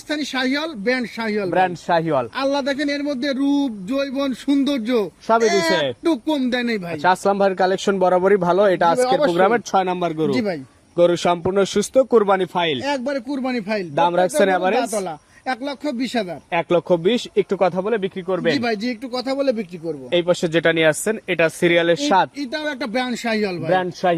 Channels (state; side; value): identical; both; correlation 1.00